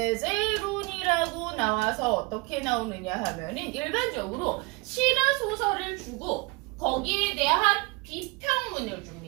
나와서 어떻게 나오느냐 하면은 일반적으로 시나 소설을 주고 거기에 대한 비평문을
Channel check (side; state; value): left; quieter; 26.3 dB